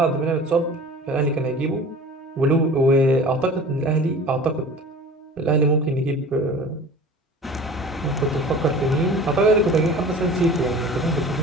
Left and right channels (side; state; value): both; normal; correlation 0.41